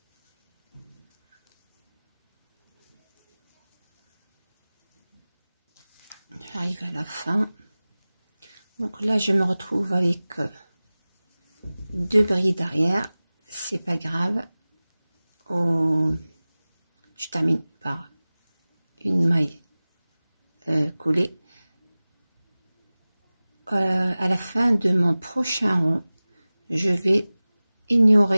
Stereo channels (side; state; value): both; inverted; correlation -0.98